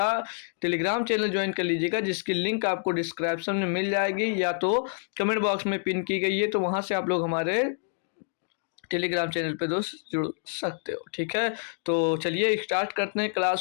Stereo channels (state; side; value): silent; right; digital silence